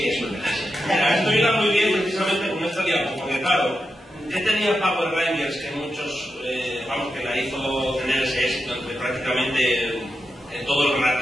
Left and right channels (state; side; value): normal; both; correlation 0.88